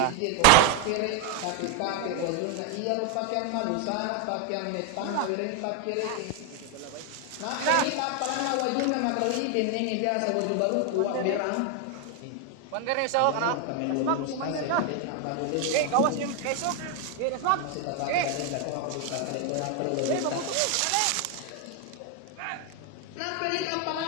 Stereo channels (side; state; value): both; different; correlation 0.01